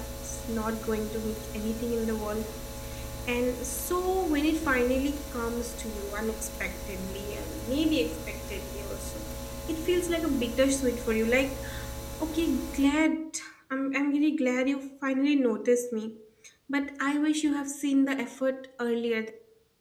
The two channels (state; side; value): identical; both; correlation 1.00